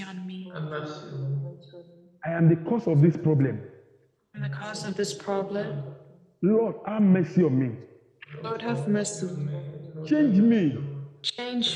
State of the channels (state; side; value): identical; both; correlation 1.00